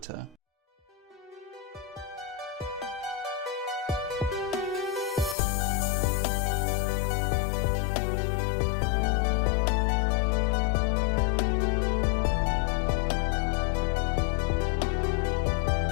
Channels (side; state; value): right; drops out; at 5.4 s